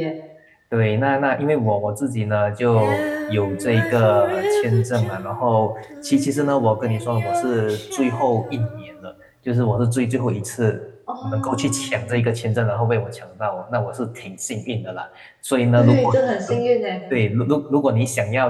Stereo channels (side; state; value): both; identical; correlation 1.00